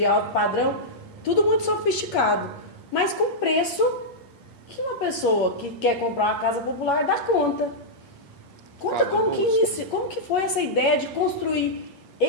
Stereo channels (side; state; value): right; late; 8.5 ms